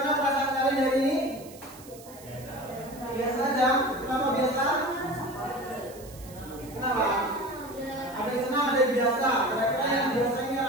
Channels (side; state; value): right; noise; hiss, 20 dB below the sound